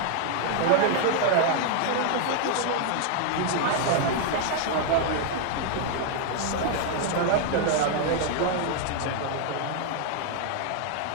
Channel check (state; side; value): different; both; correlation 0.00